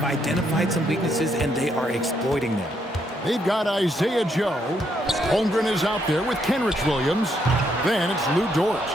identified some weaknesses, and they are exploiting them. They've got Isaiah Joe. Holmgren is out there with Kenrich Williams. Then it's Lou Dort.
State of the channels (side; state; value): both; normal; correlation 0.75